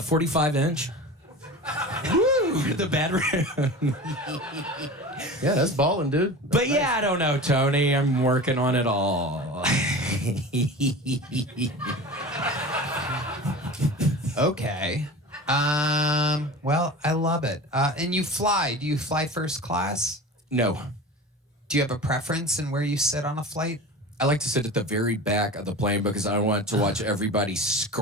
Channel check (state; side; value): normal; both; correlation 0.34